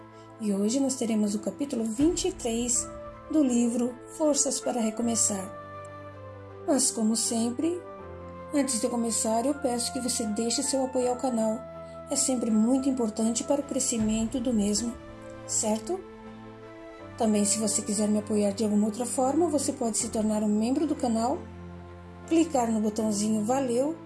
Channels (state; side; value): identical; both; correlation 1.00